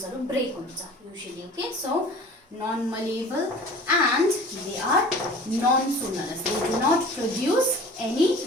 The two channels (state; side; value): normal; both; correlation 0.43